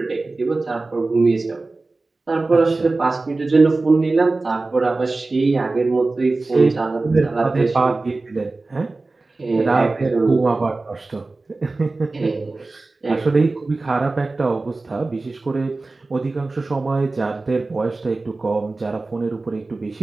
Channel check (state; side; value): quieter; left; 3.4 dB